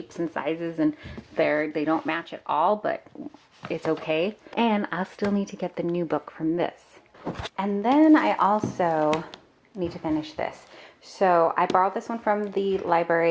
and sizes, and they don't match at all, but it's okay. And I'll still need to get the new book from this. And then I also need to finish this. So I borrowed this one from the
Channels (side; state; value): both; identical; correlation 1.00